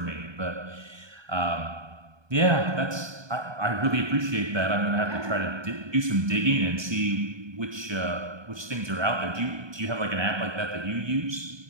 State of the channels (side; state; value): left; late; 1.2 ms